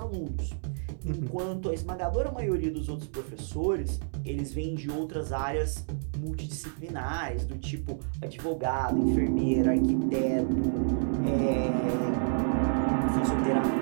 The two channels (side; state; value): left; silent; 58 dB below the other